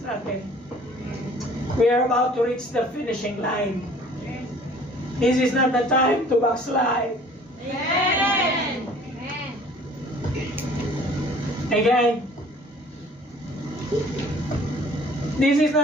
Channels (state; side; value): normal; both; correlation 0.52